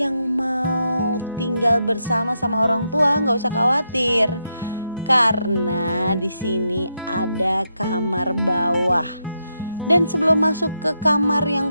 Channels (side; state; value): both; inverted; correlation -0.83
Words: mau tinggal bersama sama orang tua, nggak usah khawatir, karena di sini ada kamar bawah. Dan sebelum masuk ke kamar yang